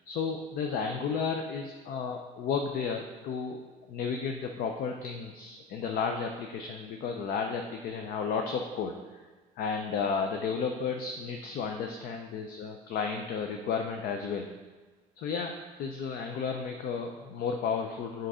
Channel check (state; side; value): quieter; right; 5.3 dB